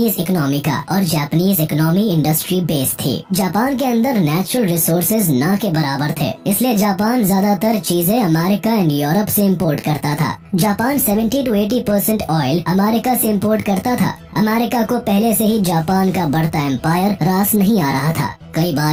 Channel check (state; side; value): identical; both; correlation 1.00